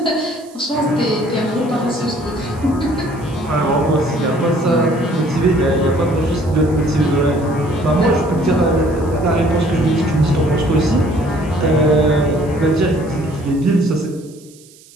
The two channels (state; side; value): noise; right; hiss, 25 dB below the sound